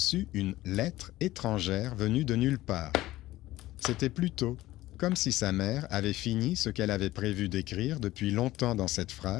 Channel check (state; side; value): quieter; right; 16.5 dB